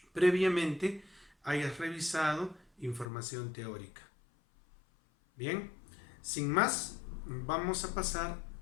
previamente hayas revisado información teórica. Bien, sin más, vamos a pasar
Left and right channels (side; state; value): right; drops out; at 3.1 s